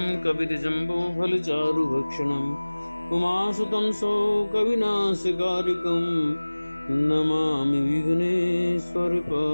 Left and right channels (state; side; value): inverted; both; correlation -1.00